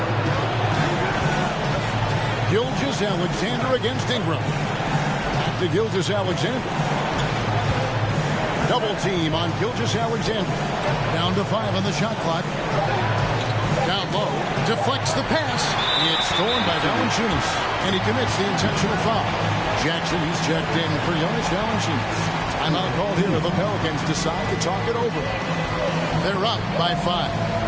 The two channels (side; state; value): both; identical; correlation 1.00